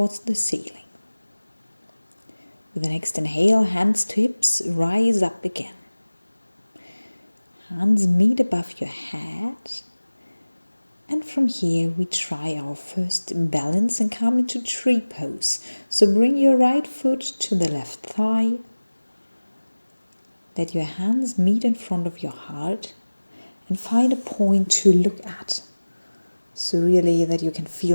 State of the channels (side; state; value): both; inverted; correlation -1.00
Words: the ceiling. With the next inhale, hands to hips, rise up again. Hands meet above your head. And from here we try our first balance and come into tree pose. So bring your right foot to the left thigh. Let your hands meet in front of your heart and find a point to look at. So really that you can